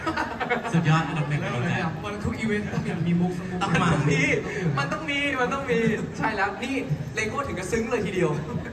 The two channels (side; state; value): both; identical; correlation 1.00